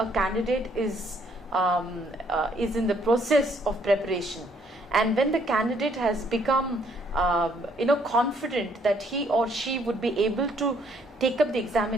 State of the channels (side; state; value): both; normal; correlation 0.67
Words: candidate is in the process of preparation, and when the candidate has become confident that he or she would be able to take up the